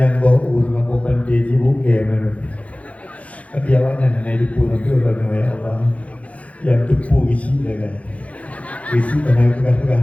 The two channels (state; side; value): late; right; 0.065 ms